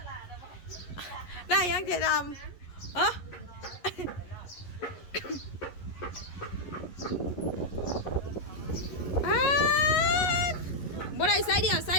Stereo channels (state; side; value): late; right; 11 ms